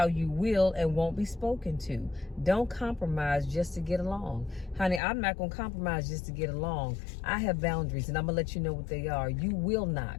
you will and won't be spoken to. Don't compromise just to get along. Honey, I'm not going to compromise just to get along. I have boundaries, and I'm going to let you know what they are. You will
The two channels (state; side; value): drops out; right; at 5.0 s